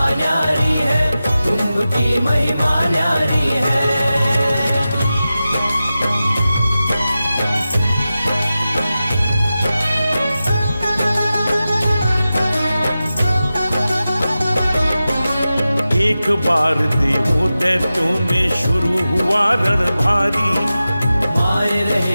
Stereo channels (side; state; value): both; inverted; correlation -0.94